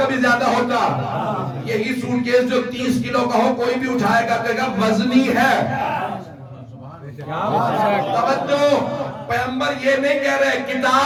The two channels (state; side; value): identical; both; correlation 1.00